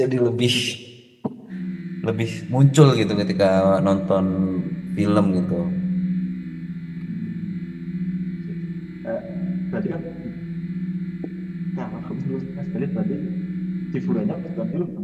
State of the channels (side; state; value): both; identical; correlation 1.00